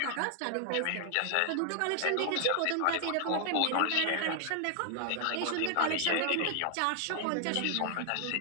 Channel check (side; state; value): both; different; correlation -0.01